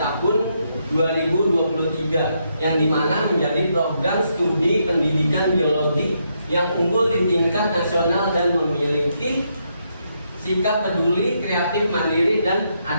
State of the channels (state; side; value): inverted; both; correlation -0.78